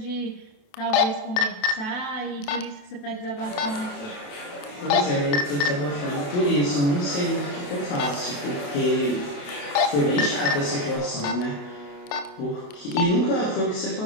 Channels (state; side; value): late; right; 28 ms